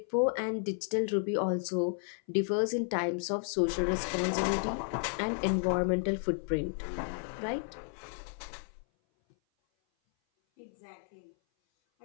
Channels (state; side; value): silent; right; 56 dB below the other